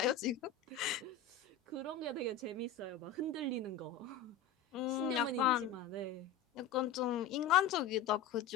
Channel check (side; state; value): right; quieter; 6.8 dB